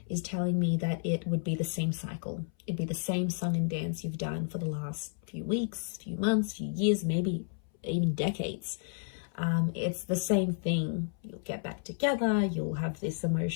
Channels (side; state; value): right; silent; 57 dB below the other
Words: is telling me that it would be the same cycle. It'd be the same song and dance you've done for the last few weeks, few months, few years, maybe even decades. It's the same thing. You'll get back together, you'll have this